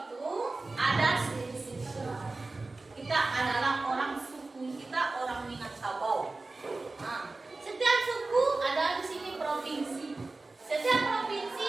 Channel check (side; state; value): left; quieter; 3.4 dB